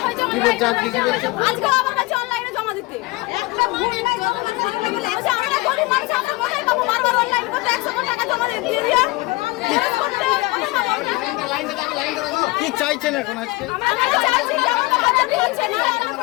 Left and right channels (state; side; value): quieter; right; 22.0 dB